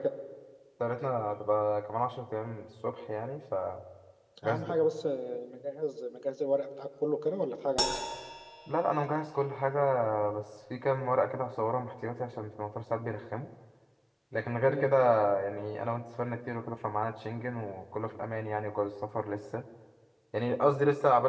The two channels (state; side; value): identical; both; correlation 1.00